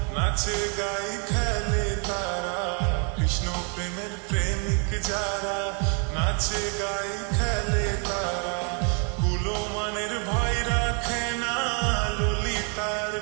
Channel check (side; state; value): left; quieter; 38.0 dB